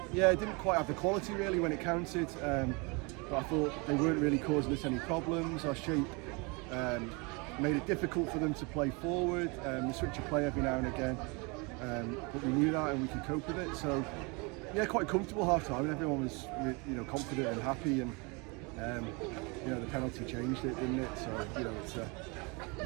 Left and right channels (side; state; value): left; quieter; 29.5 dB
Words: didn't quite have the quality really when it counted. But I thought they weren't really causing us any problems. Our shape made it difficult for them to play forward. We switch a play every now and again. But we knew that and we could cope with it. So yeah, quite comfortable half time, and everyone was confident and happy, and the penalty changed it, didn't it? So